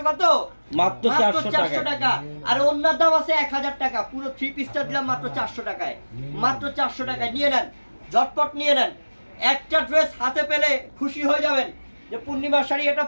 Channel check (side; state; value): both; inverted; correlation -1.00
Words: কত? মাত্র 400 টাকা। আর অন্যার দাম আছে 1000 টাকা। পুরো 3 পিসটা দিলাম মাত্র 400 টাকায়, মাত্র 400 টাকায়। নিয়ে নেন, ঝটপট নিয়ে নেন। একটা ড্রেস হাতে পেলে খুশি হয়ে যাবেন যে পূর্ণিমার শাড়ি এটা